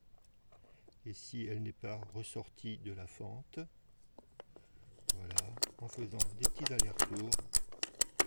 Et si elle n'est pas ressortie de la fente, voilà, en faisant des petits allers-retours,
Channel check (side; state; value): both; inverted; correlation -1.00